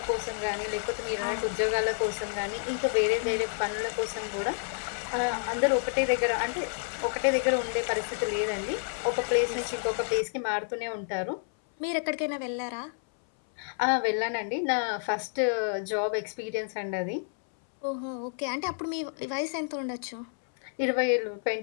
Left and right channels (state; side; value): silent; right; 58 dB below the other